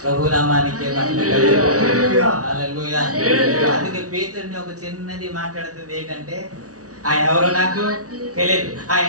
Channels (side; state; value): left; late; 0.67 ms